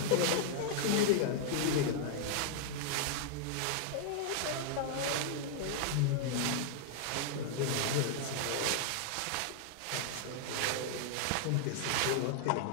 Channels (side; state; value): both; different; correlation -0.01